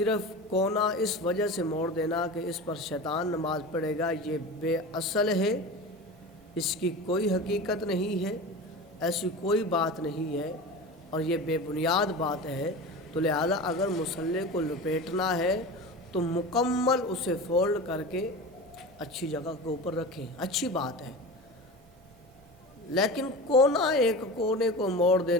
کونا اس وجہ سے موڑ دینا کہ اس پر شیطان نماز پڑھے گا، یہ بے اصل ہے، اس کی کوئی حقیقت نہیں ہے، ایسی کوئی بات نہیں ہے، اور یہ بے بنیاد بات ہے۔ تو لہذا اگر مصلی کو لپیٹنا ہے تو مکمل اسے فولڈ کر کے اچھی جگہ کے اوپر رکھیں، اچھی بات ہے، لیکن ایک کونے کو موڑ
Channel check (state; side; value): normal; both; correlation 0.30